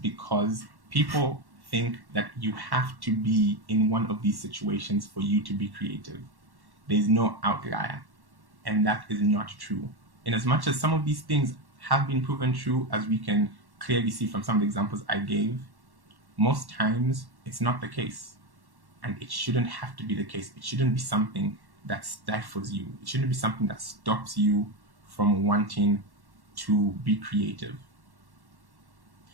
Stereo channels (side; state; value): left; late; 1.1 ms